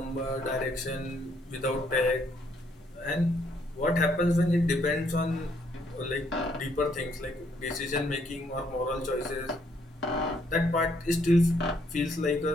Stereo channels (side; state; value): both; normal; correlation 0.70